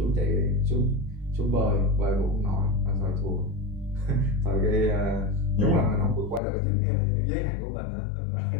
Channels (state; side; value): drops out; right; at 6.4 s